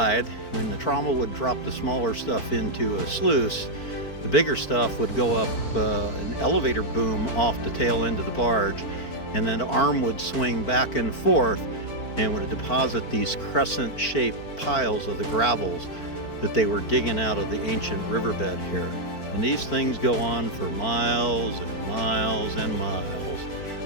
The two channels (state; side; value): late; right; 4.5 ms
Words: When the trommel would drop the smaller stuff into a sluice, the bigger stuff would go up an elevator boom off the tail end of the barge, and then the arm would swing back and forth and would deposit these crescent-shaped piles of the gravels that they were digging out of the ancient riverbed here. And these things go on for miles and miles and miles.